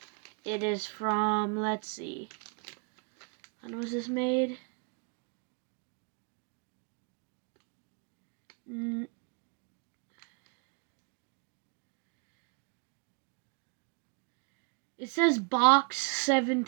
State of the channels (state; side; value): quieter; left; 35.7 dB